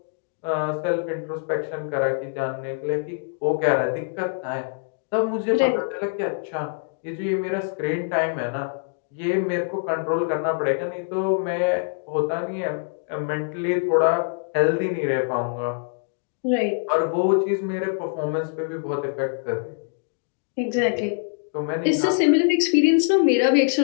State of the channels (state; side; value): silent; right; digital silence